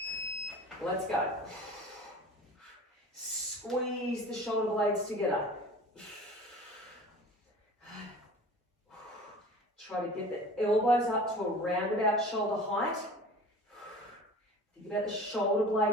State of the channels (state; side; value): normal; both; correlation 0.40